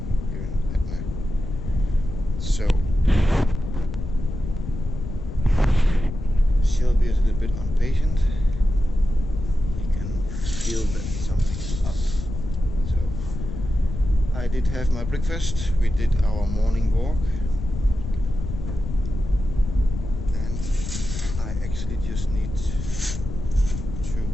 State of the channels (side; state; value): left; noise; rumble, 7 dB below the sound